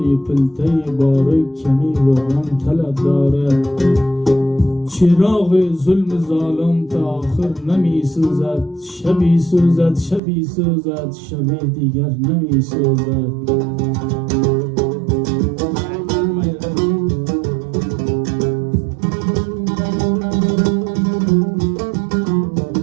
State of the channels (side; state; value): left; drops out; at 10.2 s